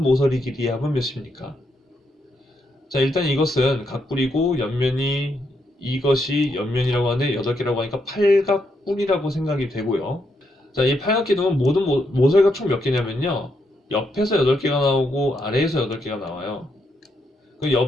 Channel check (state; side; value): normal; both; correlation 0.79